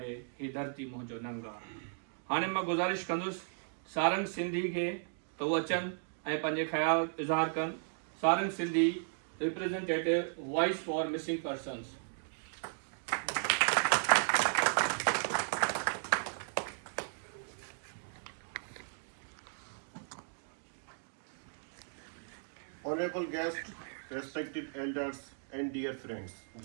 ही धरती मुंहिंजो नंग आ। हाणे मां गुज़ारिश कंदुसि सारंग सिंधी खे त उहे अचनि ऐं पंहिंजे ख़्याल इज़हार कनि। Sarang Sindhi representative voice for missing persons. Honorable guests, respected elders, and dear friends,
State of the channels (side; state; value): left; silent; digital silence